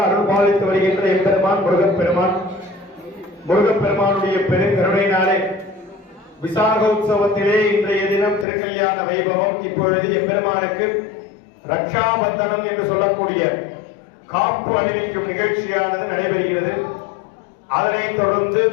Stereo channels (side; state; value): right; drops out; at 8.5 s